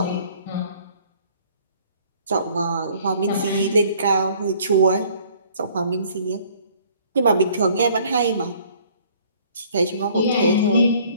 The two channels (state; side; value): inverted; both; correlation -0.57